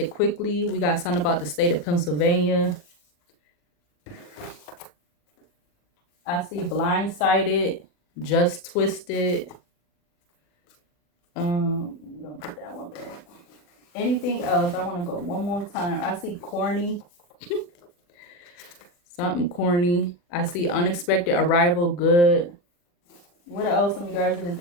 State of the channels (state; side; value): late; right; 40 ms